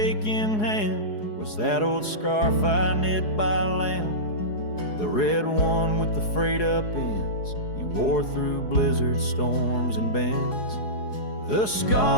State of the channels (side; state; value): right; late; 4.8 ms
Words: hand was that old scarf I knit by land, the red one with the frayed up ends you wore through blizzard storms and bends. The